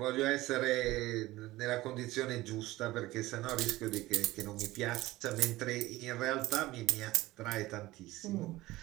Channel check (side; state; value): left; quieter; 18.0 dB